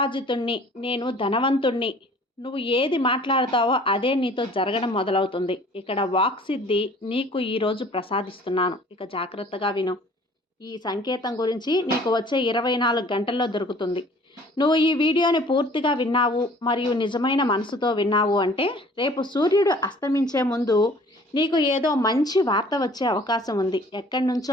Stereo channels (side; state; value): both; normal; correlation 0.52